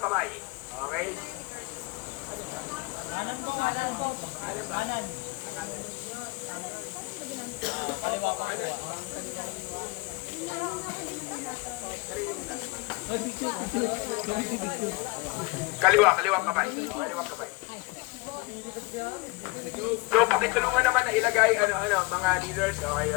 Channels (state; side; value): quieter; right; 25.6 dB